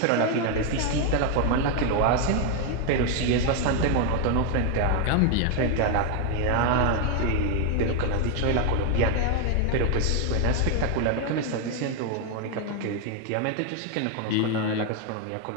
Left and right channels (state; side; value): different; both; correlation 0.01